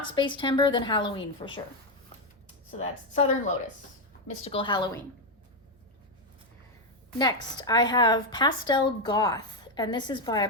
Spacetember, then Halloween for sure. So that's Southern Lotus, Mystical Halloween. Next, I have Pastel Goth. And this is by, I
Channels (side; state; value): both; normal; correlation 0.05